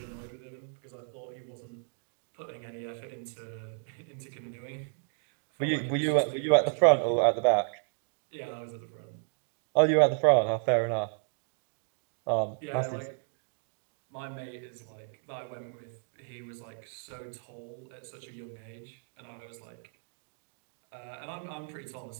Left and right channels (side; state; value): left; silent; digital silence